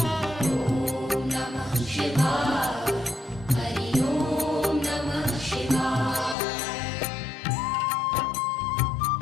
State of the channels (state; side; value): drops out; right; at 6.4 s